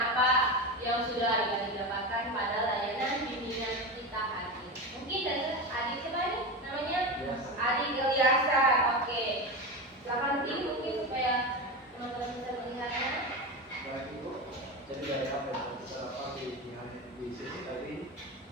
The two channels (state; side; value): normal; both; correlation 0.21